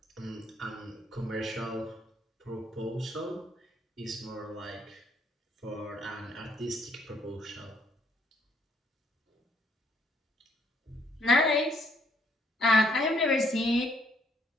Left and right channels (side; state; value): both; normal; correlation 0.68